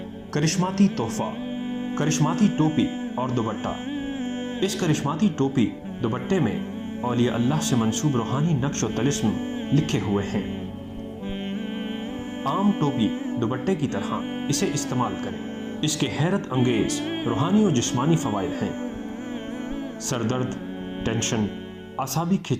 करिश्माती तोहफा, करिश्माती टोपी और दुपट्टा। इस करिश्माती टोपी दुपट्टे में औलिया अल्लाह से मंसूब रूहानी नक्श व तलिस्म लिखे हुए हैं। आम टोपी दुपट्टे की तरह इसे इस्तेमाल करें। इसके हैरत अंगेज रूहानी और जिस्मानी फ़वाइद हैं। सरदर्द, टेंशन, आसाबी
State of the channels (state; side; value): identical; both; correlation 1.00